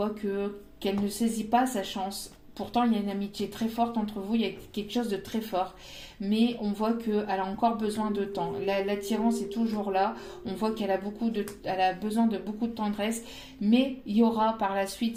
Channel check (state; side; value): identical; both; correlation 1.00